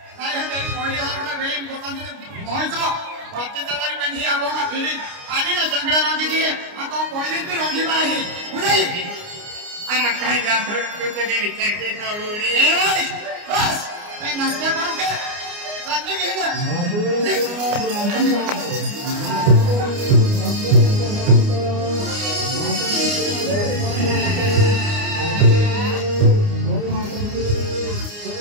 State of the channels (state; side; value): late; left; 29 ms